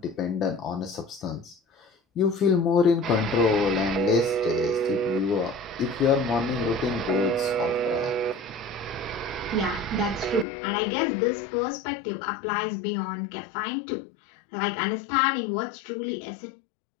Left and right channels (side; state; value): right; drops out; at 10.5 s